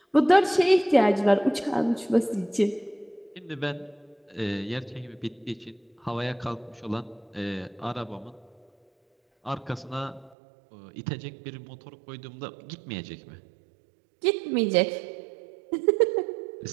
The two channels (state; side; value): drops out; left; at 10.4 s